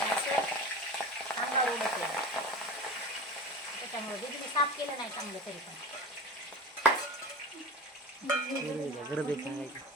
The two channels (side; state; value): both; normal; correlation 0.30